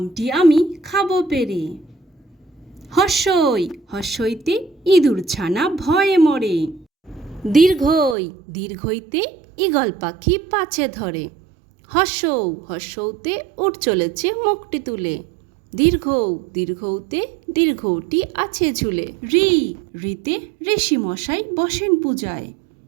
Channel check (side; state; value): left; drops out; at 8.2 s